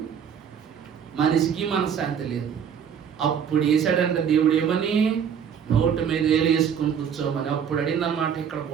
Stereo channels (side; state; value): left; quieter; 7.9 dB